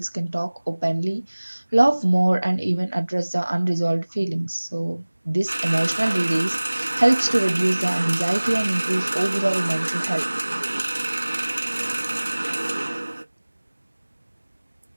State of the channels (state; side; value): inverted; both; correlation -1.00